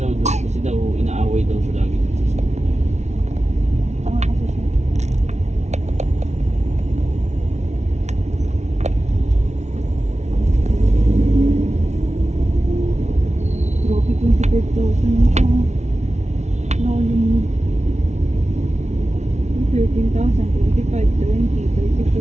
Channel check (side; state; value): left; late; 0.32 ms